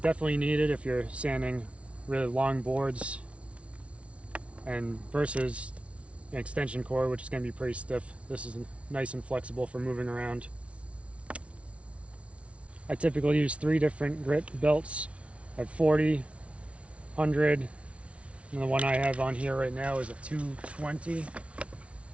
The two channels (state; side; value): late; left; 0.062 ms